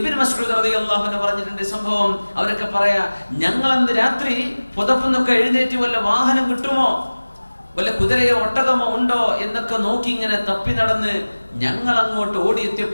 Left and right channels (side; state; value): both; inverted; correlation -1.00